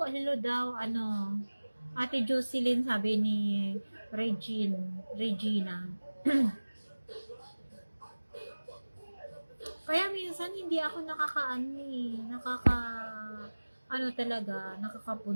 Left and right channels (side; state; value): both; inverted; correlation -1.00